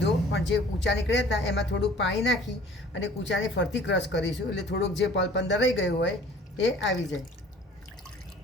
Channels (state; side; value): normal; both; correlation 0.50